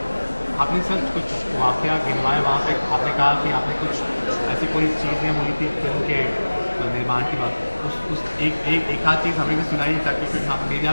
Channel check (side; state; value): both; inverted; correlation -1.00